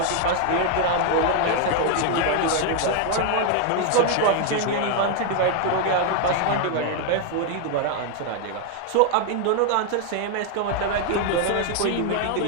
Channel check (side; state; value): both; different; correlation 0.00